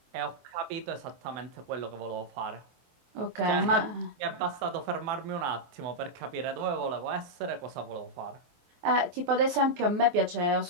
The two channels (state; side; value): late; left; 24 ms